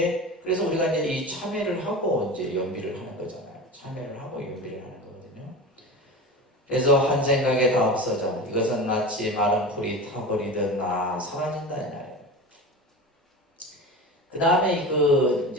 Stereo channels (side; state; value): both; normal; correlation 0.30